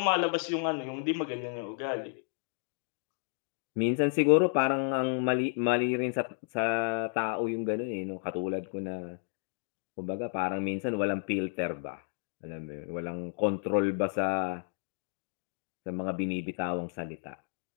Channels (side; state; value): right; silent; digital silence